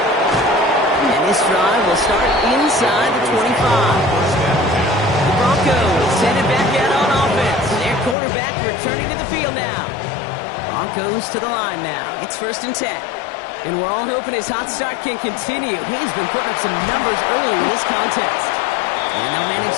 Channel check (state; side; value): drops out; right; at 8.2 s